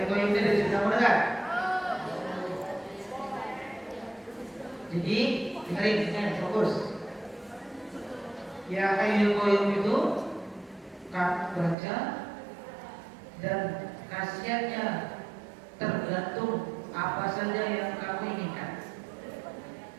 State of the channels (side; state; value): left; drops out; at 11.8 s